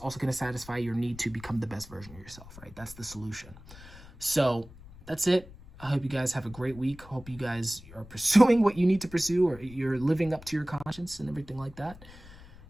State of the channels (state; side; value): noise; left; rumble, 19 dB below the sound